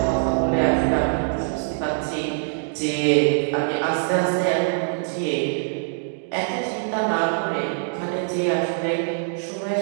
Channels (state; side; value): silent; left; 63 dB below the other